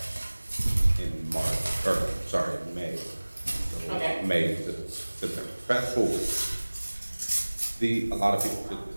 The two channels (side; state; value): both; inverted; correlation -1.00